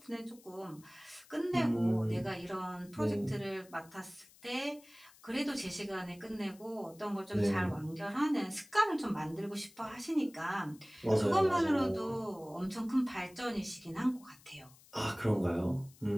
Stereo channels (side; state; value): left; noise; hiss, 25 dB below the sound